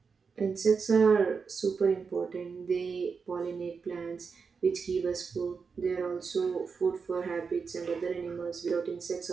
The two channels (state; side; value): quieter; left; 5.4 dB